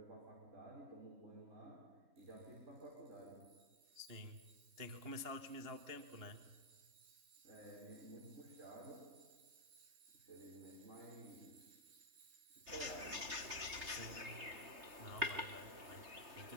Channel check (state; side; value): late; left; 3.3 ms